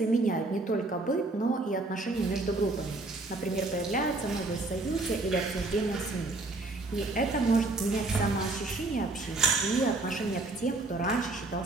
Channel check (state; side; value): quieter; left; 3.1 dB